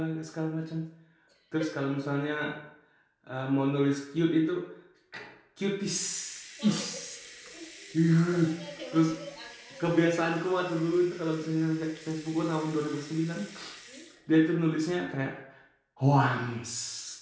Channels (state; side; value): identical; both; correlation 1.00